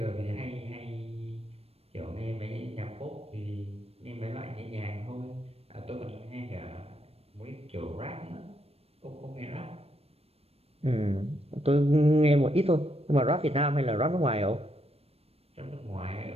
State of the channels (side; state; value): left; late; 0.29 ms